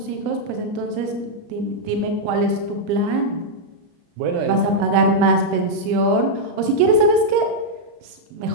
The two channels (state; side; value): late; left; 34 ms